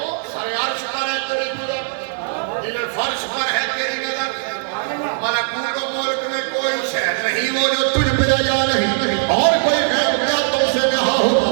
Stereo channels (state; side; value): silent; left; digital silence